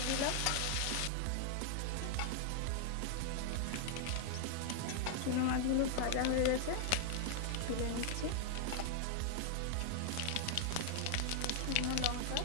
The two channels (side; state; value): both; different; correlation 0.00